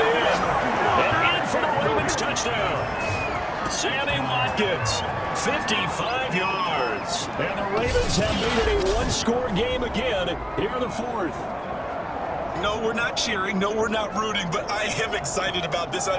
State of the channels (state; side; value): identical; both; correlation 1.00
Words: in. And in for the Ravens touchdown. Sammy Watkins. 55 yards. And the Ravens have made it a 1-score game again here in the 4th. No, we're not cheering. No, we're not rooting, but I am excited about this.